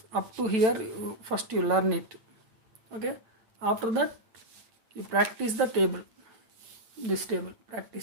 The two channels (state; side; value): late; left; 9.0 ms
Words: up to here, first you learn it. Okay, after that you practice the table, this table,